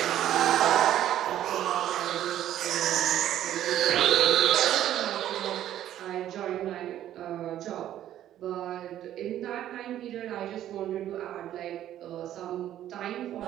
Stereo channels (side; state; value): left; quieter; 12.0 dB